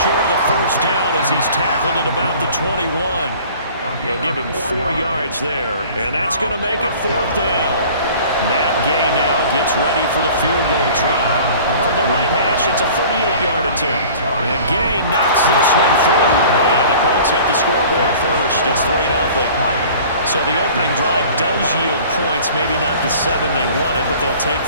of the first down as he's tackled at about the 21. They'll give him 4 yards there. And that's going to make it 4th down. Matt Gay now gets ready for the field goal try. From the right hash pass. It's a 38-yard attempt. And Gay knocks this one through. And the Colts hit the scoreboard first. It's 3-0. So the opening drive does yield points. Maybe not the 7 they wanted, but they'll take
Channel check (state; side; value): inverted; both; correlation -0.46